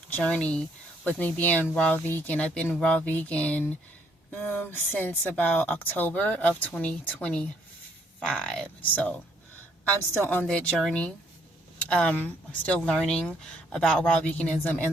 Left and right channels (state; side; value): normal; both; correlation 0.68